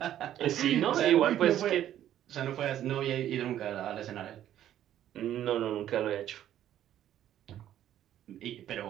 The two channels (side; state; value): left; quieter; 11.6 dB